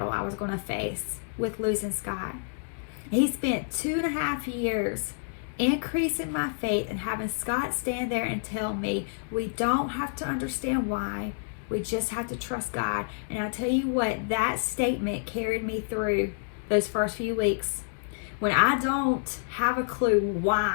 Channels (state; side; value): silent; right; digital silence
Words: I was going to face with losing Scott. He spent 2.5 years increasing my faith and having Scott stand there and tell me we don't have to understand why. We just have to trust God. And I tell you what, that statement carried me through those first few weeks. When I don't have a clue